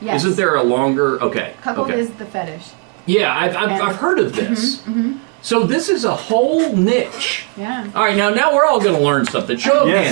Isn't there a longer? Okay. Cuckold is the fetish. Yeah, I've heard of this. So this is a whole niche. Yeah. All right, now we're all going to learn something. Show of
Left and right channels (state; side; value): quieter; left; 35.1 dB